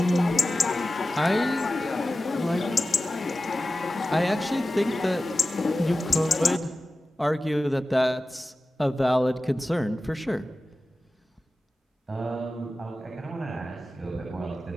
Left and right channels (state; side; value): normal; both; correlation 0.94